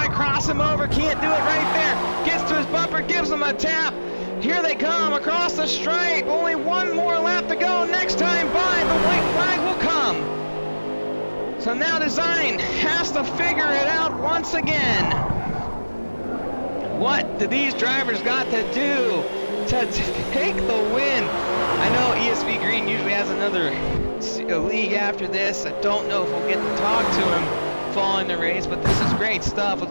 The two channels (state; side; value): inverted; both; correlation -1.00